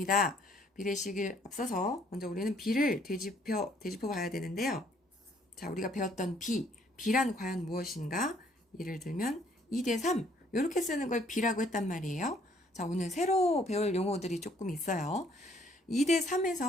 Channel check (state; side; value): normal; both; correlation 0.63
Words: 비례식을 앞서서 먼저 우리는 비를 되짚어 봐야 되는데요. 자, 우리가 배웠던 비란 과연 무엇인가? 예를 들면 2대 3 이렇게 쓰는 걸 비라고 했단 말이에요. 자, 오늘 새로 배울 용어들이 조금 있어요. 2대